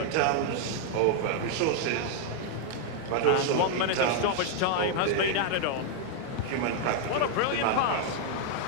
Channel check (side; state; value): both; different; correlation 0.00